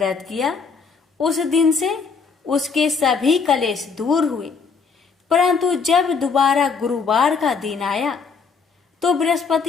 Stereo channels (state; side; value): quieter; right; 5.3 dB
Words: किया। उस दिन से उसके सभी कलेश दूर हुए। परंतु जब दोबारा गुरुवार का दिन आया तो